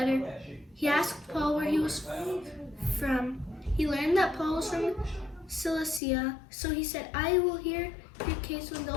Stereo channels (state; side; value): drops out; right; at 6.0 s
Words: He asked Paul where he was from. He learned that Paul was from Cilicia, so he said, I will hear your case when